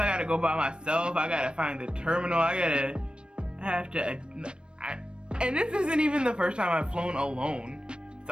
I gotta go by myself. I gotta find the terminal. And this isn't even the first time I've flown alone. So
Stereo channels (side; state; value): left; late; 0.055 ms